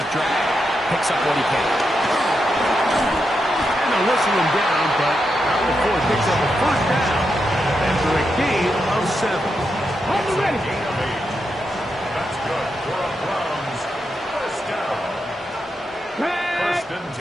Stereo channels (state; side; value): normal; both; correlation 0.85